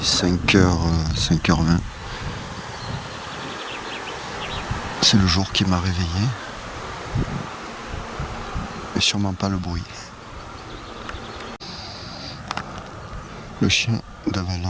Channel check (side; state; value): both; identical; correlation 1.00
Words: 5h, 5h20. C'est le jour qui m'a réveillé, mais sûrement pas le bruit. Le chien